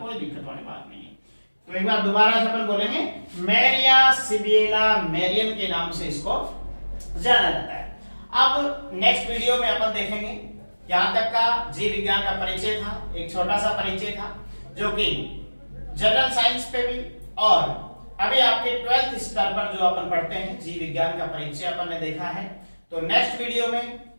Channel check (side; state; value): both; inverted; correlation -1.00